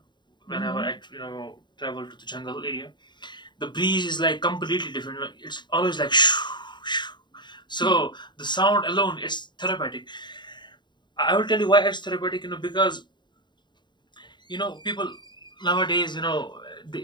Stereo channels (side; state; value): right; late; 0.22 ms